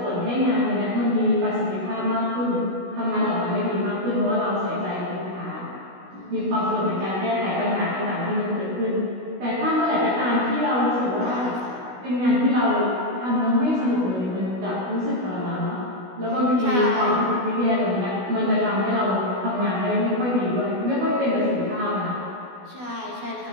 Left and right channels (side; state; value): left; late; 16 ms